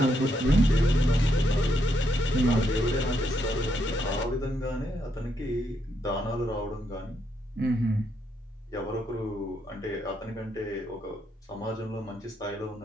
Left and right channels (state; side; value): normal; both; correlation 0.77